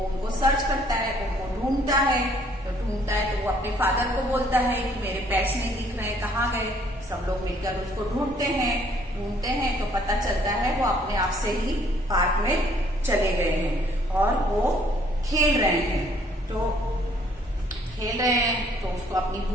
उनको सर्च करता है, उनको ढूंढता है। तो वो अपने फादर को बोलता है कि मेरे पेट्स नहीं दिख रहे, कहाँ गए। सब लोग मिलकर उसको ढूंढते हैं तो पता चलता है वो अपने आप से ही पार्क में चले गए हैं और वो खेल रहे हैं। तो उसको अपनी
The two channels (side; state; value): both; normal; correlation 0.62